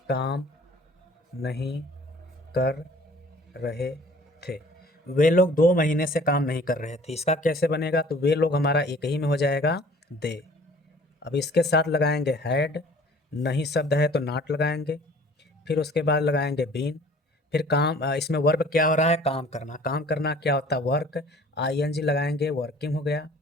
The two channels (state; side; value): normal; both; correlation 0.51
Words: काम नहीं कर रहे थे। वे लोग 2 महीने से काम नहीं कर रहे थे, इसका कैसे बनेगा, तो वे लोग हमारा एक ही में हो जाएगा, दे। अब इसके साथ लगाएंगे हैड। नहीं शब्द है तो नॉट लगाएंगे। फिर उसके बाद लगाएंगे बीन। फिर काम, इसमें वर्ब क्या हो रहा है, काम करना। काम करना क्या होता है, वर्क। आईएनजी लगाएंगे, वर्किंग हो गया।